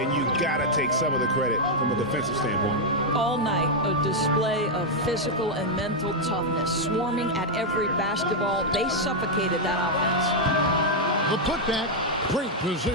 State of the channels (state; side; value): normal; both; correlation -0.01